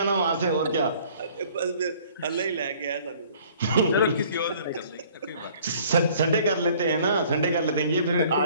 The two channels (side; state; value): both; inverted; correlation -0.55